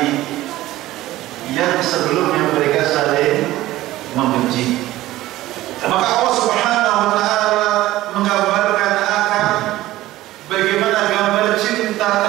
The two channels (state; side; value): quieter; left; 16.1 dB